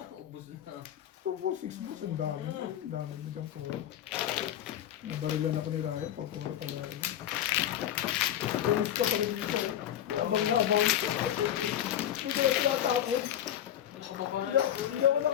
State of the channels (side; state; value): right; quieter; 10.9 dB